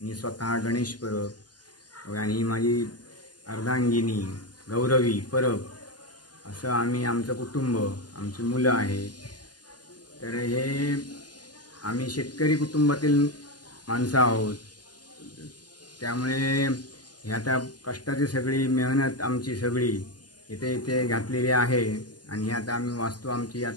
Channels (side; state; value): right; late; 0.70 ms